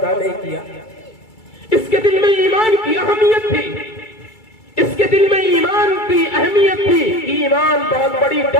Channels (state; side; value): late; right; 2.3 ms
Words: نہیں کیا، اس کے دل میں ایمان کی اہمیت تھی، اس کے دل میں ایمان کی اہمیت تھی، ایمان بہت بڑی